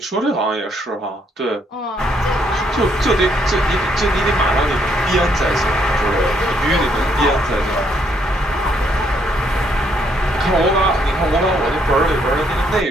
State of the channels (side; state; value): both; normal; correlation 0.71